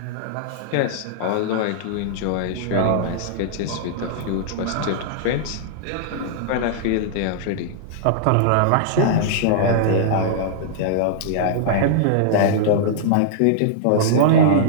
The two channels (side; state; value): both; different; correlation -0.02